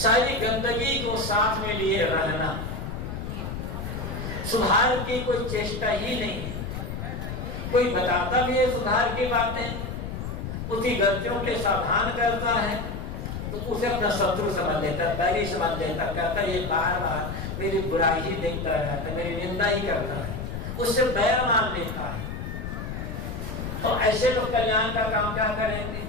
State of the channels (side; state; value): left; noise; rumble, 6 dB below the sound